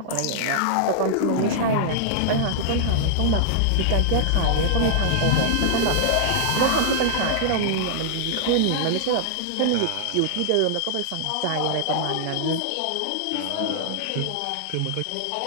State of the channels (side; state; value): both; different; correlation -0.01